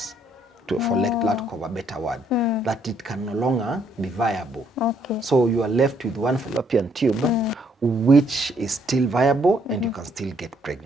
for lack of a better word, that it can no longer be viable. Okay. So you are left with one fallopian tube which is still viable and you can still get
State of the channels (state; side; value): normal; both; correlation 0.69